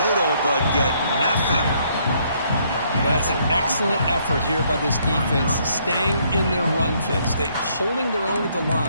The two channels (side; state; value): both; inverted; correlation -0.69